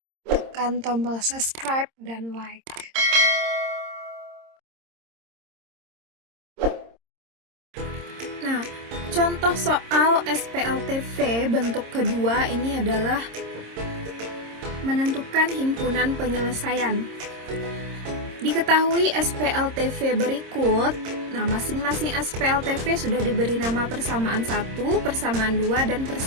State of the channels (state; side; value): late; left; 26 ms